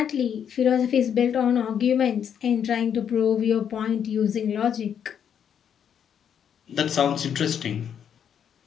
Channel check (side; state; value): right; quieter; 8.4 dB